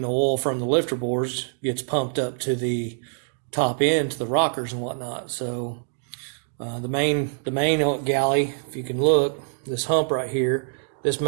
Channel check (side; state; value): left; silent; digital silence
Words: the oil from the lifter bores gets pumped up to the top end, to the rockers and whatnot. So the main galley, if you can look, this hump right here, this